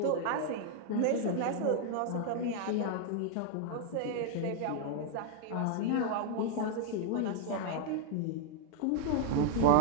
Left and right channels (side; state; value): both; different; correlation -0.01